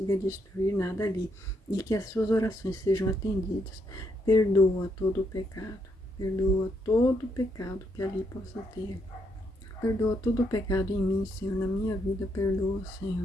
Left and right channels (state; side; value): normal; both; correlation 0.76